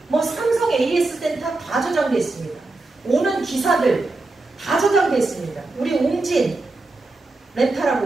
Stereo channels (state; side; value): quieter; left; 3.2 dB